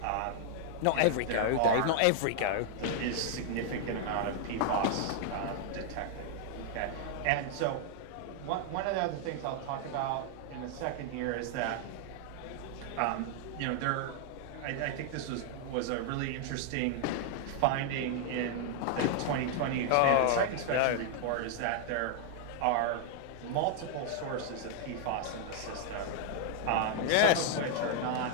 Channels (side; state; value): both; different; correlation 0.00